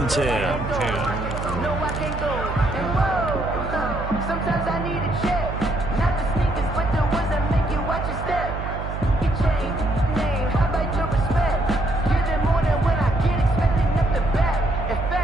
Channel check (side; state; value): right; noise; hum, 6 dB below the sound